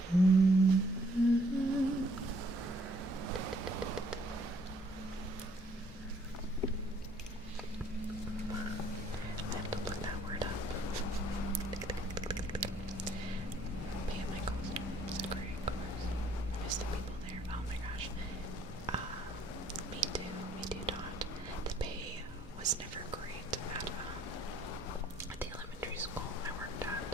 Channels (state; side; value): normal; both; correlation 0.63